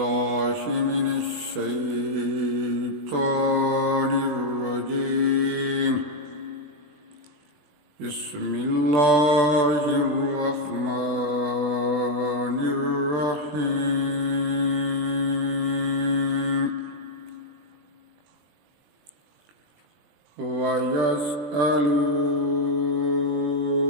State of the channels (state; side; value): late; left; 20 ms